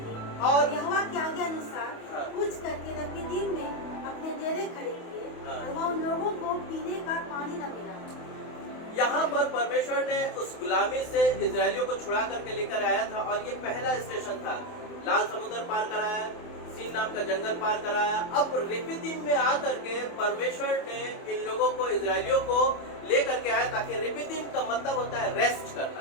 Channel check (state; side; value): late; right; 28 ms